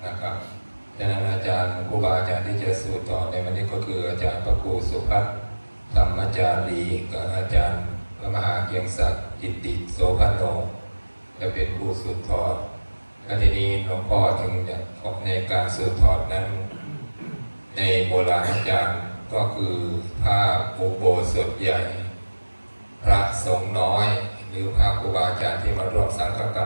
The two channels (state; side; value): inverted; both; correlation -1.00